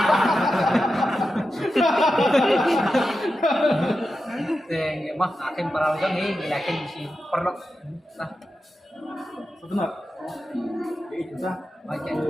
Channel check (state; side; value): normal; both; correlation 0.90